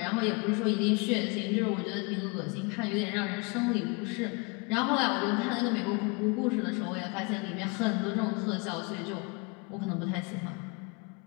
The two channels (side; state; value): right; quieter; 30.6 dB